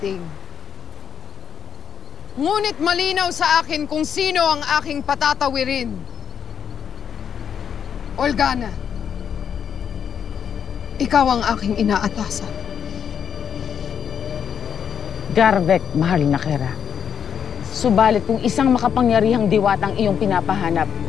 Ngunit malinaw sa akin kung sino ang aking patatawirin. Olgana, ikaw ang aking inaatasan. Garvek, mahal na Kera. Subalit kung isang makapangyarihang diwatang iyong pinapahanap,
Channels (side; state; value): right; quieter; 7.8 dB